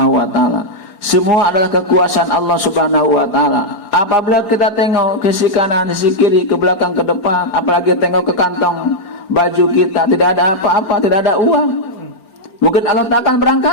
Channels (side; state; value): right; late; 4.4 ms